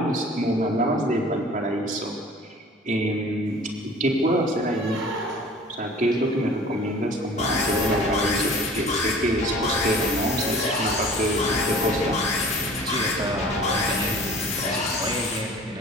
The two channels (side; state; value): both; normal; correlation 0.46